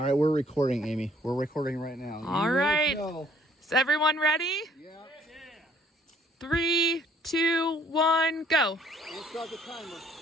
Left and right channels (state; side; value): normal; both; correlation 0.61